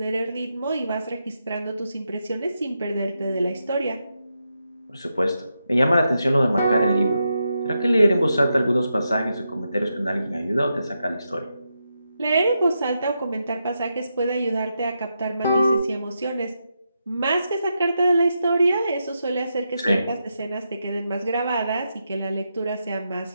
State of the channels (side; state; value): both; inverted; correlation -0.85